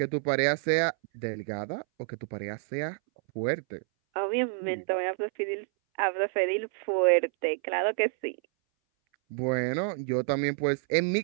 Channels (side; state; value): left; silent; 59 dB below the other